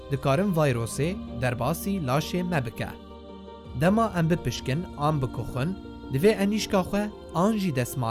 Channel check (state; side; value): identical; both; correlation 1.00